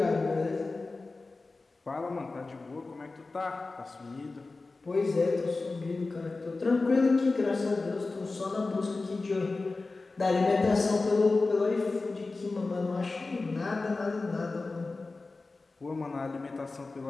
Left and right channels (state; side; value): quieter; right; 3.6 dB